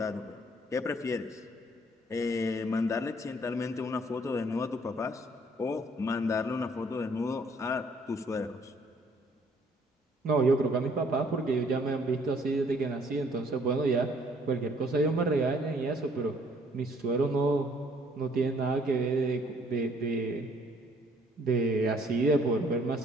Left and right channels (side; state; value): both; normal; correlation 0.62